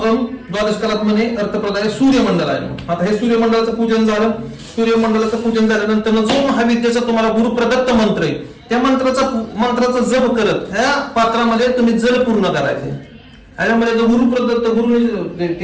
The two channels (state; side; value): identical; both; correlation 1.00